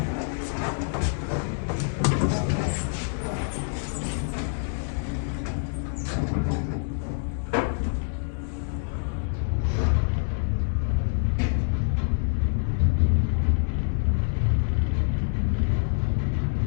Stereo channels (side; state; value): right; silent; digital silence